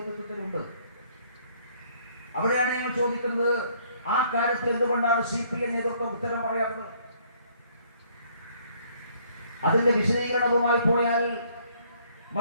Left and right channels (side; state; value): both; inverted; correlation -0.63